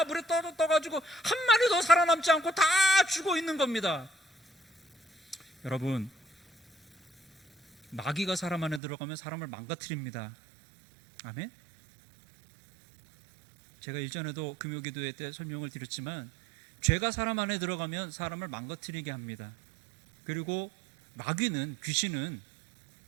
물에 떠가지고 한 마리도 살아남지 않고 다 죽어 있는 겁니다. 여러분, 마귀가 사람 안에 들어가면 사람을 망가뜨립니다. 아멘? 제가 일전에도 금요기도회 때 설명을 드렸지만, 죄가 사람 안에 들어가면 사람을 망가뜨리게 합니다. 그리고 마귀는, 귀신은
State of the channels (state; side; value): drops out; left; at 8.8 s